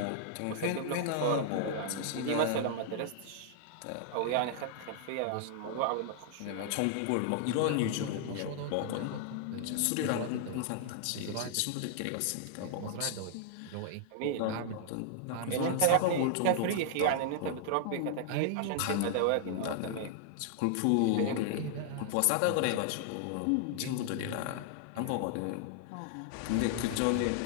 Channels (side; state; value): both; different; correlation -0.01